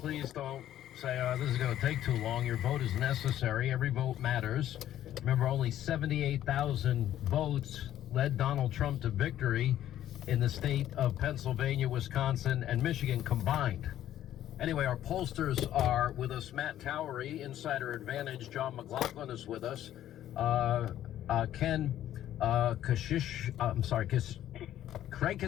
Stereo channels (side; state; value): right; quieter; 12.1 dB